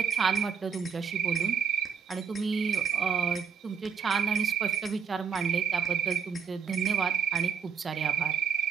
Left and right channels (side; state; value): left; quieter; 7.1 dB